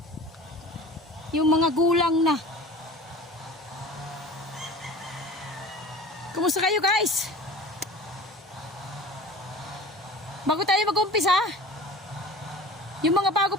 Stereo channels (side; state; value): both; normal; correlation 0.40